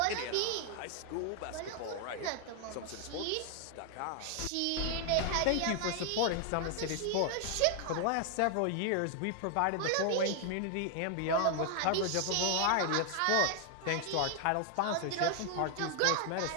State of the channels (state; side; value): different; both; correlation 0.00